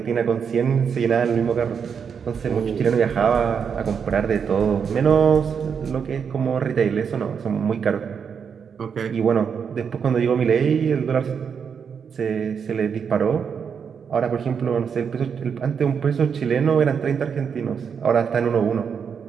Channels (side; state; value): left; quieter; 6.8 dB